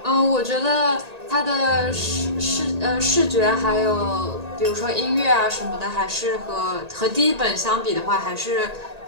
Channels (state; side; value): late; left; 1.8 ms